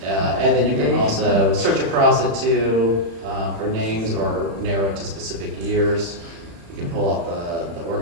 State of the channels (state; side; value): late; left; 36 ms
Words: And then you can also search across it too, for names or narrow it to specific years. You can pull up the